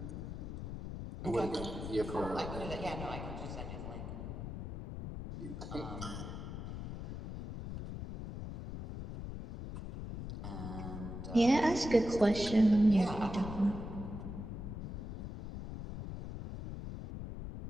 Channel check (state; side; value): noise; left; rumble, 7 dB below the sound